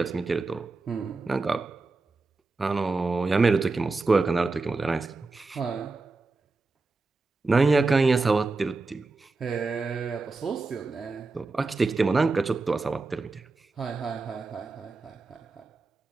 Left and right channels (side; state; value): left; quieter; 3.7 dB